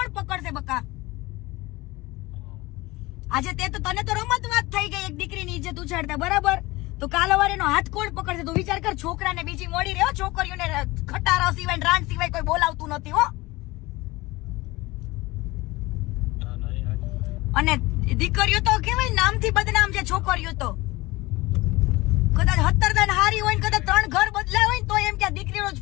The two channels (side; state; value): right; quieter; 21.0 dB